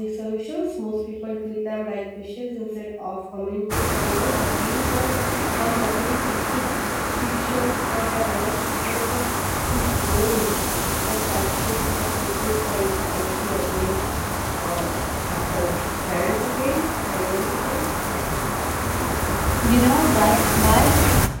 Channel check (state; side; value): identical; both; correlation 1.00